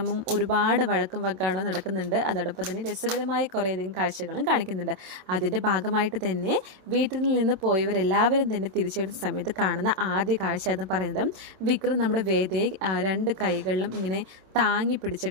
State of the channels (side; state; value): left; late; 27 ms